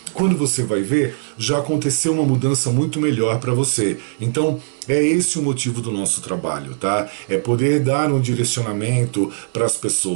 quando você vai ver, já aconteceu uma mudança muito melhor para você. Então, é esse o motivo do nosso trabalho, tá? É poder dar um direcionamento para as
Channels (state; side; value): silent; left; 60 dB below the other